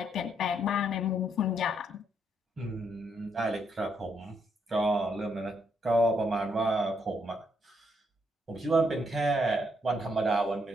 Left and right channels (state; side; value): normal; both; correlation 0.75